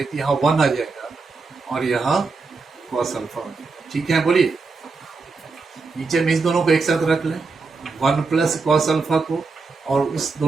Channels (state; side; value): quieter; left; 4.2 dB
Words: तो यहाँ 1 आ जाएगा और यहाँ कॉस अल्फा आ जाएगा, ठीक है। बोलिए नीचे में इस दोनों को एक साथ रख लें, 1 प्लस कॉस अल्फा को, और उस